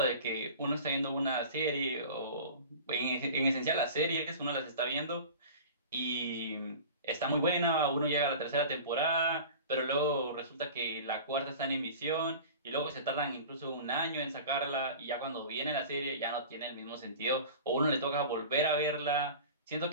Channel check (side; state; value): both; inverted; correlation -0.38